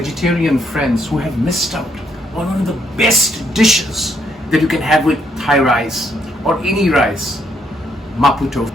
friends who have missed out one of the best dishes that you can have with Thai rice or any rice, Mapo Tofu.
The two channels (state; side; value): normal; both; correlation 0.72